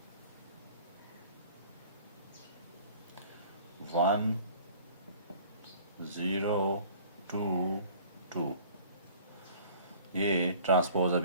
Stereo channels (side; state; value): both; inverted; correlation -0.49